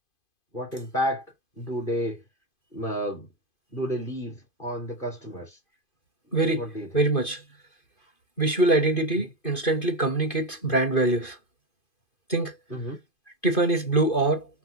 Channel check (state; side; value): late; right; 2.5 ms